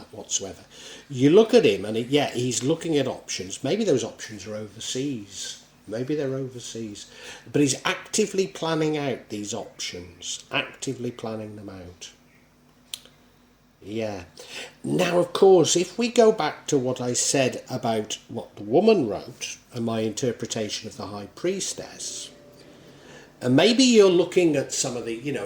whatsoever. You look at him and he's looking at options. Maybe those options are overseas. Maybe they're overseas. But he's actively planning out these options. Actively planning them out. Yeah. Now, of course, if we go back to what I said about what the woman wrote and my interpretation of the High Priestess, and maybe you're looking at some of the,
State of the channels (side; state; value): both; identical; correlation 1.00